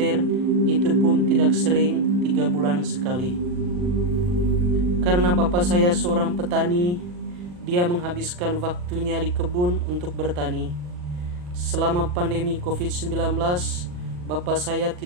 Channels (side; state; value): left; late; 40 ms